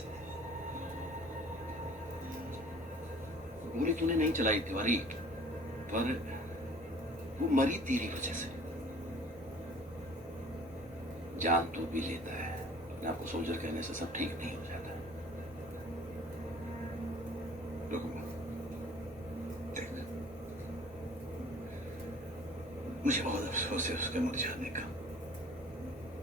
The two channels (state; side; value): normal; both; correlation 0.50